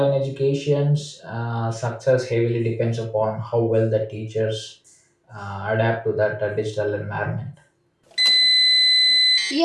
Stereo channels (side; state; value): both; identical; correlation 1.00